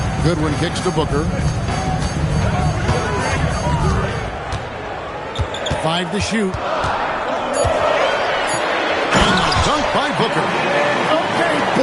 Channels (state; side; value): identical; both; correlation 1.00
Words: Goodwin kicks to Booker. 5 to shoot. And the dunk by Booker. Okay,